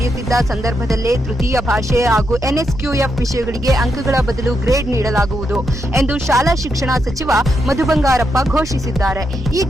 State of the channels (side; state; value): both; normal; correlation 0.82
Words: ಸಂದರ್ಭದಲ್ಲೇ ತೃತೀಯ ಭಾಷೆ ಹಾಗೂ ಎನ್ಎಸ್ಕ್ಯೂಎಫ್ ವಿಷಯಗಳಿಗೆ ಅಂಕಗಳ ಬದಲು ಗ್ರೇಡ್ ನೀಡಲಾಗುವುದು ಎಂದು ಶಾಲಾ ಶಿಕ್ಷಣ ಸಚಿವ ಮಧು ಬಂಗಾರಪ್ಪ ಘೋಷಿಸಿದ್ದಾರೆ. ಈ